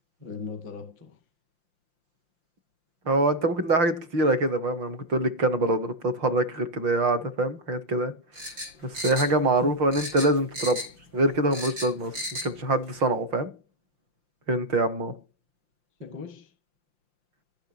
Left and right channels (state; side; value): late; left; 5.7 ms